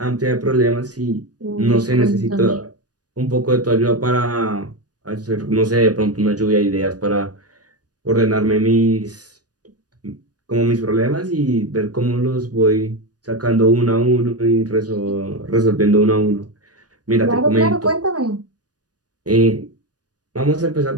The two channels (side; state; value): left; late; 0.68 ms